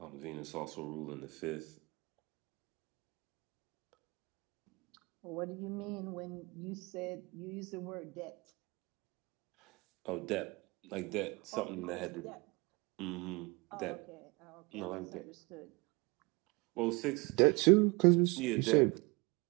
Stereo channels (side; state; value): left; quieter; 26.4 dB